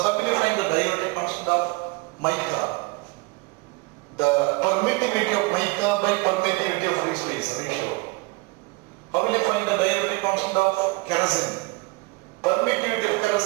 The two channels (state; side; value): quieter; left; 26.0 dB